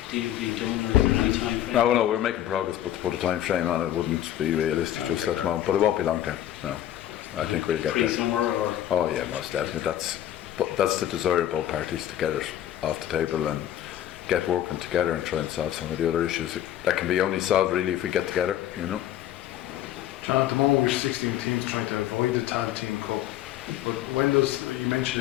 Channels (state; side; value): quieter; right; 12.1 dB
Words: deal being done, or is there any time frame? No, we're making progress, but to put a time frame on it wouldn't be realistic just at the moment. But it won't be long term. No, I think we'll get there. Pre-summer, or? Oh yeah, most definitely. That's the desire of both parties, to get it off the table and get working together and try and solve some of the other issues that can be only solved really if we get together. John, at the moment we're 16 teams trying to avoid the Tag Team Cup. But when does, you